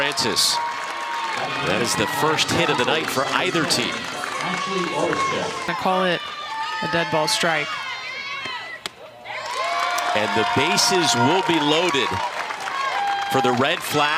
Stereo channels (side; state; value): both; identical; correlation 1.00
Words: That is the first hit of the night for either team. I call it a dead ball strike. And the bases will be loaded for the red